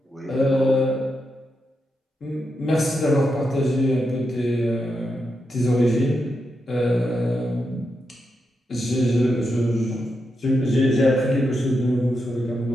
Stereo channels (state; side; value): normal; both; correlation 0.85